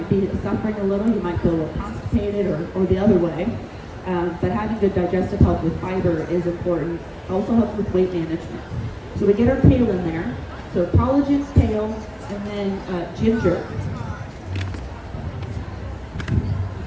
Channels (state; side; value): identical; both; correlation 1.00